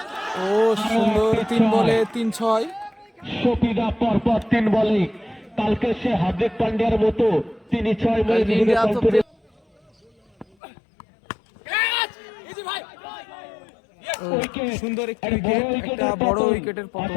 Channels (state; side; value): drops out; right; at 10.6 s